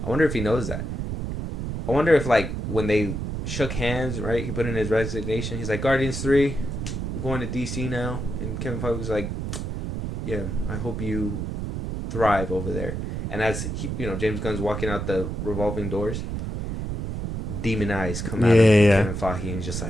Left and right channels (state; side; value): noise; right; rumble, 4 dB below the sound